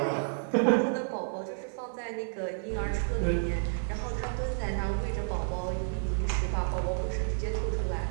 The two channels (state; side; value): silent; left; 57 dB below the other